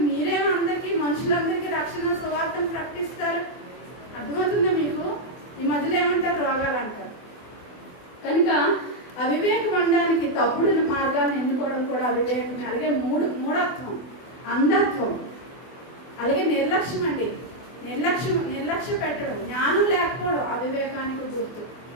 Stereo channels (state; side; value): late; right; 24 ms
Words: మీరేమో అందరికీ, మనుషులందరికీ రక్షణ సువార్తను ప్రకటిస్తారు. అర్థమవుతుందా మీకు? ఈ మధ్యలో ఏమంటారు? రోగాలు అంటారు. కనుక అవివేకం అనడానికి తప్పుడు మార్గాలను ఎన్నుకోవడం కూడా అవివేకమే. అలాగే మూఢత్వం, అంధత్వం, అలాగే నిర్లక్ష్యం అండి. నిర్లక్ష్య పెట్టడం, జ్ఞానం లేకపోవడం అవివేకానికి గుర్తు.